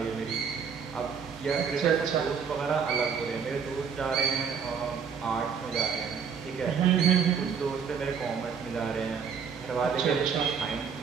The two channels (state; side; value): quieter; left; 6.6 dB